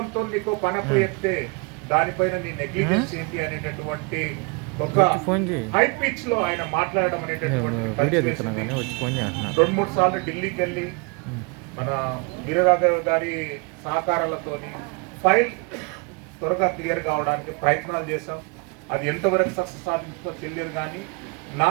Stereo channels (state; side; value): quieter; left; 31.4 dB